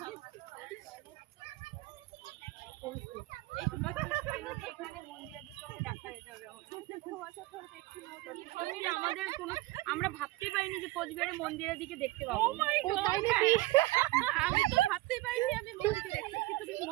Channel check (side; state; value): left; quieter; 19.1 dB